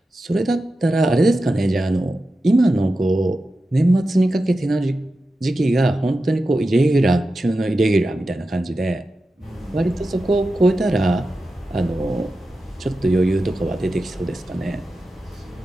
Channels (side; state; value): both; normal; correlation 0.92